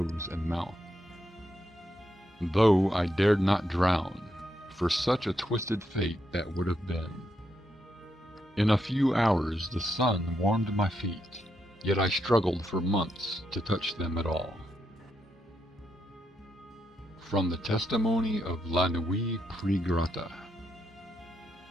and mouth. Though I dared not drown, for such a twisted fate that would have been. In a few hours the sun warmed my feet, yet I struggled for months to touch them at all. From the testimony of La Nuit Pregrata.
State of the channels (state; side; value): normal; both; correlation 0.81